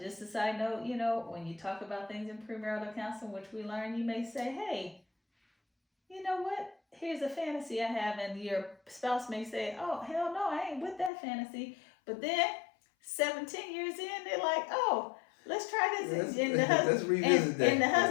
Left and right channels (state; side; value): drops out; right; at 11.1 s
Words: a side note, when you talk about things in premarital counseling, which we learn, you may say, hey, you know what? Here's a fantasy I have. And your spouse may say, oh, hell no, I ain't with that fantasy. But then 17 years in, they're like, oh, let's try this. Let's revisit that. And the